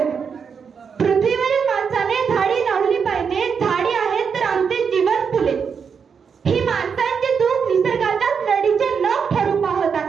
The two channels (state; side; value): quieter; left; 6.4 dB